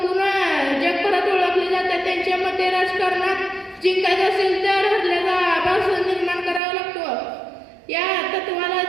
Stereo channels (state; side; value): drops out; left; at 6.6 s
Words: जगभरात ओळखले जातात. त्यांच्या मते राजकारणात जिंकायचं असेल तर हरल्याचा आभास निर्माण करावा लागतो. या तत्वाला